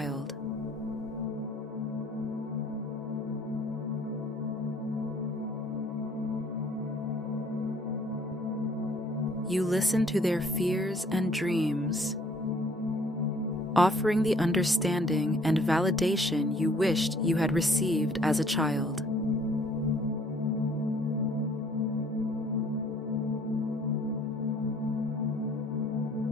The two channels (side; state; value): both; normal; correlation 0.59